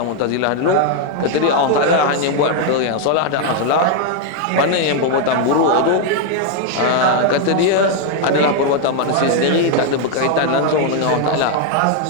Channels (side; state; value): both; different; correlation 0.00